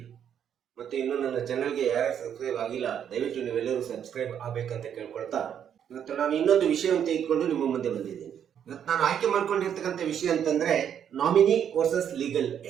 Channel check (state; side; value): quieter; left; 8.9 dB